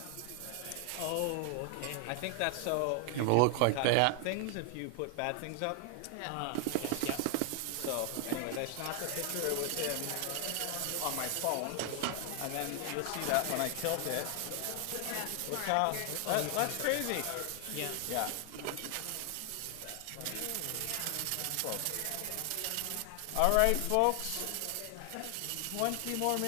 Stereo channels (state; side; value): different; both; correlation 0.00